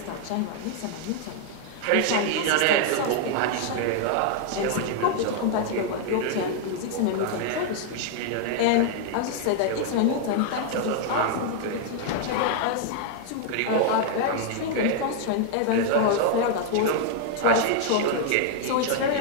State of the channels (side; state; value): both; different; correlation 0.00